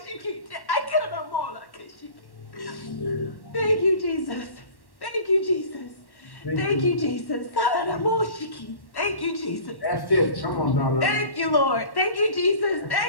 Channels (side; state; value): right; late; 1.1 ms